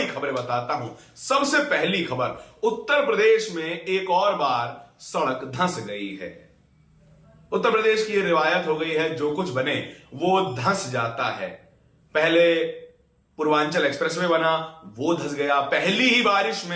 खबरें बताता हूं। सबसे पहली खबर, उत्तर प्रदेश में एक और बार सड़क धंस गई है। उत्तर प्रदेश की यह रिवायत हो गई है, जो कुछ बने वो धंस जाता है। पहले पूर्वांचल एक्सप्रेसवे बना, वो धंस गया। पहली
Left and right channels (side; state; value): both; identical; correlation 1.00